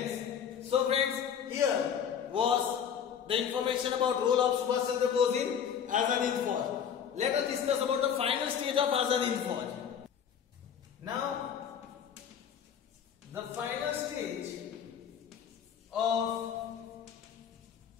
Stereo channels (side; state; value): right; quieter; 8.1 dB